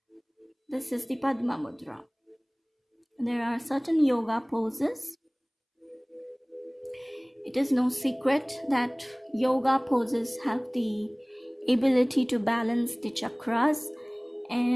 This is the Padma Mudra. There are certain yoga poses. It is no secret that yoga poses have the ability to balance the chakras,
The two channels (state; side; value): identical; both; correlation 1.00